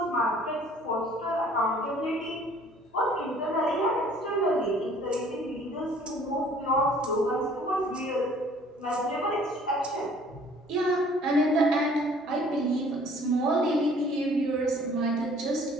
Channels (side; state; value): both; normal; correlation 0.55